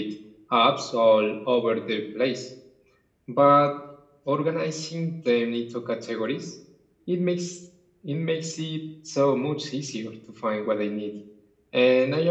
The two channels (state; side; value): identical; both; correlation 1.00